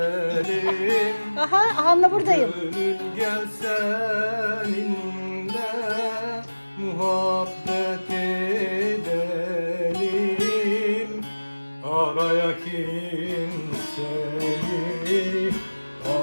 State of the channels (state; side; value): inverted; both; correlation -1.00